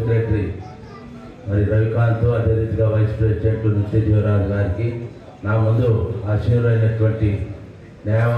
మరి రవికాంత్, అదే రీతిగా వైస్ ప్రెసిడెంట్ నిత్యజీవరాజు గారికి, నా ముందు ఆశీనులైనటువంటి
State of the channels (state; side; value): identical; both; correlation 1.00